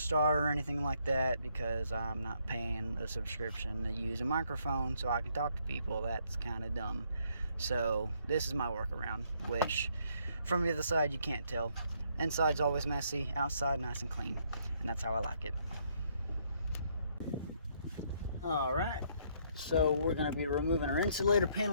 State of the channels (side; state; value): both; inverted; correlation -0.70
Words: or anything like that, because I'm not paying a subscription to use a microphone so I can talk to people. That's kind of dumb. So this is my workaround, which from the other side you can't tell. Inside's always messy, outside nice and clean, and that's how I like it. Alright, so we're going to be removing our insulator